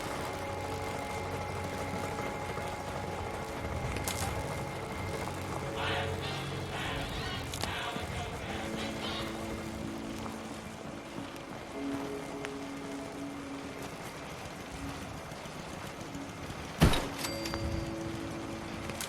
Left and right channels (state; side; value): identical; both; correlation 1.00